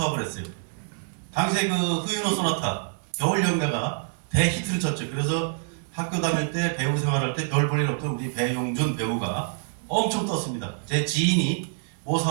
했어요. 당시에 그 후유노 소나타 겨울 연가가 대히트를 쳤죠. 그래서 학교 다닐 때 배우 생활할 때 별 볼 일 없던 우리 배용준 배우가 엄청 떴습니다. 제 지인이 모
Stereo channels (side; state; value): left; silent; digital silence